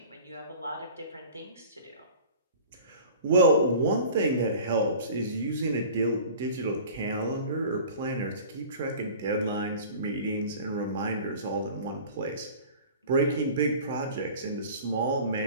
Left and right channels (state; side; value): inverted; both; correlation -0.42